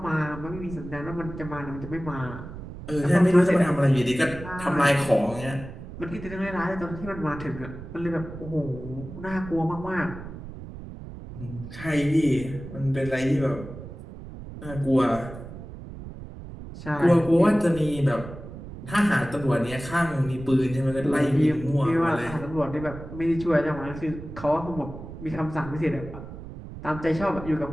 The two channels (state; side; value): noise; right; rumble, 12 dB below the sound